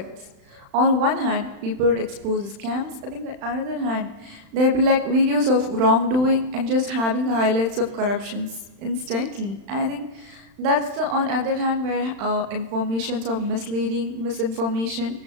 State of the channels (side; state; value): left; late; 35 ms